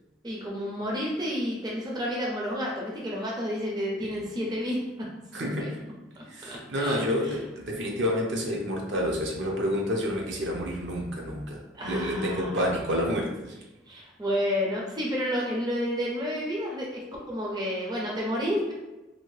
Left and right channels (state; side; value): normal; both; correlation 0.44